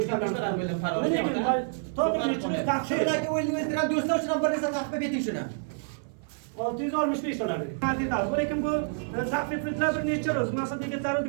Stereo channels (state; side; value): silent; left; 56 dB below the other